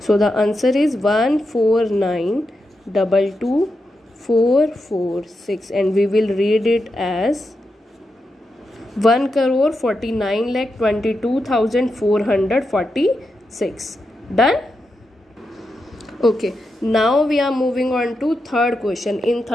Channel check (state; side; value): normal; both; correlation 0.87